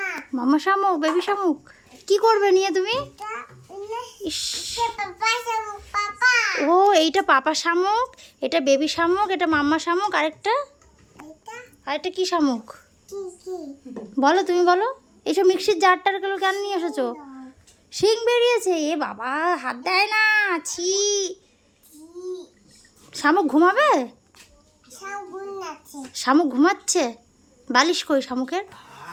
মামা শামুক, বেবি শামুক। কি করবে নিয়ে তুমি? ইস, পাপা শামুক, পাপা। ও এইটা পাপা শামুক, এটা বেবি শামুক, এটা মাম্মা শামুক, এটা আরেকটা কি শামুক কি কি? বলো, তুমি বলো। এইসব মিক্সির জারটারগুলো কেন নিয়ে এসেছো? শিং বেরিয়েছে, এ বাবা, হাত দেয় না, ছি। শামুক ঘুমাবে? শামুক নাচে। শামুক ঘুমাচ্ছে। বালিশ কই শামুকের?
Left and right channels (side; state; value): both; identical; correlation 1.00